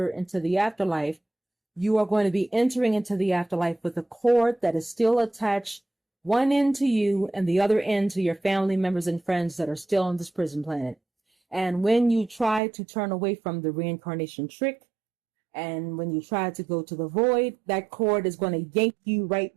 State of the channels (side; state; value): left; drops out; at 12.6 s